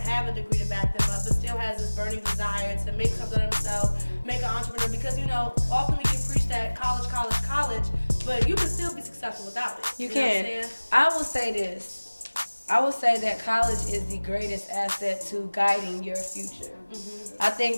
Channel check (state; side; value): inverted; both; correlation -1.00